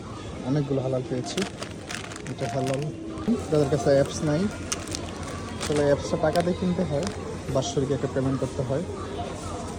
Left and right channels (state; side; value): identical; both; correlation 1.00